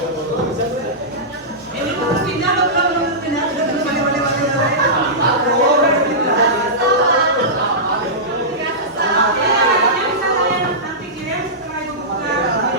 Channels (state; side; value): normal; both; correlation -0.16